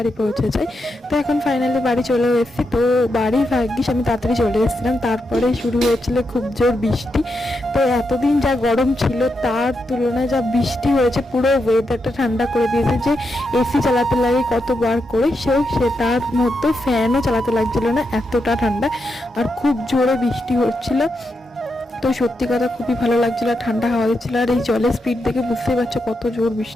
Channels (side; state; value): both; normal; correlation 0.84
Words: পৌঁছে যাই। তো এখন ফাইনালি বাড়ি চলে এসেছি। তো বাড়ি ভাগ্যিস আমি তাড়াতাড়ি চলে এসেছিলাম, তারপরে শুরু হয়েছিল খুব জোর বৃষ্টি। তো এতদিন যা গরম ছিল তার তুলনায় যা বৃষ্টি হয়েছে, পুরো ওয়েদারটা ঠান্ডা করে দিয়েছে। যে এসি চালাতে লাগে কতবার করে, সে তার মধ্যে ফ্যানও চালাতে লাগছিল না, এতটা ঠান্ডা। আর খুব জোরে বৃষ্টি হচ্ছিল। তো সত্যি কথা খুবই ভালো লাগছিল, ঠান্ডা হাওয়া দিচ্ছিল। আর এই জলের স্পিড দেখে বুঝতেই পারছো কত জোর